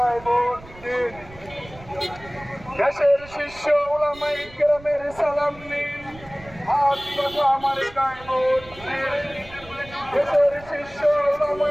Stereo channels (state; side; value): noise; right; rumble, 20 dB below the sound